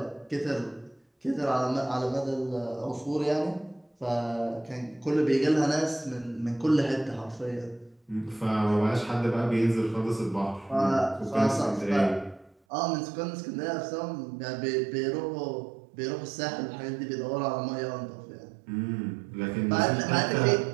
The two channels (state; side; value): drops out; left; at 12.6 s